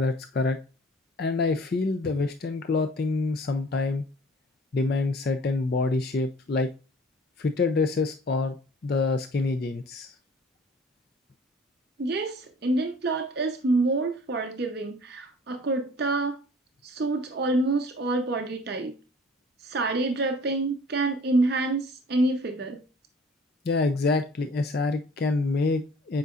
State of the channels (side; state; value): both; normal; correlation 0.50